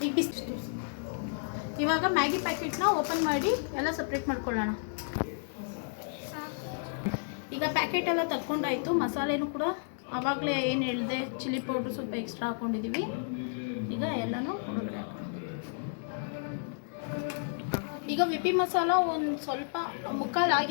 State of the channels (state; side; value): silent; right; digital silence